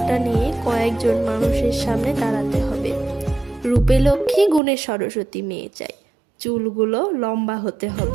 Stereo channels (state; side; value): drops out; left; at 4.6 s